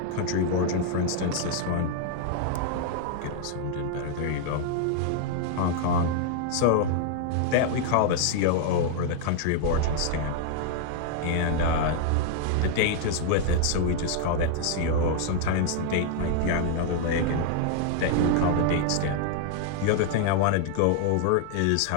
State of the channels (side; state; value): both; different; correlation 0.00